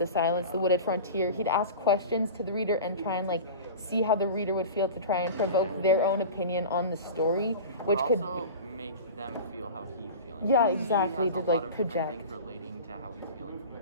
silence, the wooded frontier. He'd ask questions to the reader and try and like see how the reader would feel to try and provoke their own opinion on the story, which but could also make them feel how he's feeling. Yeah, He exactly, has to, a lot like, of different project. things relating to how he's feeling from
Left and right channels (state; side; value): inverted; both; correlation -0.33